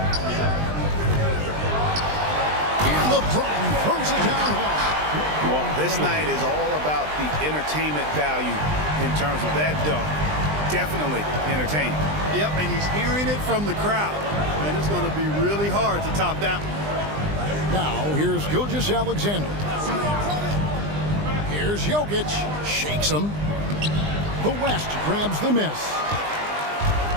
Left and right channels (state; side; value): late; left; 20 ms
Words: And LeBron throws it down hard. Well, this night is all about the entertainment value in terms of that dunk. Definitely entertaining. Yep, and he's hearing it from the crowd. And it's going to be really hard to top that one. Now, here's Gilgeous-Alexander. Here's Jokic. Shakes him. The West grabs the miss.